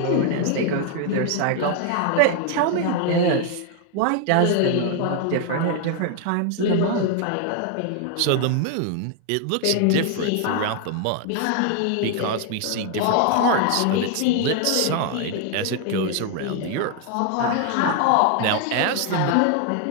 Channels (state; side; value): different; both; correlation 0.00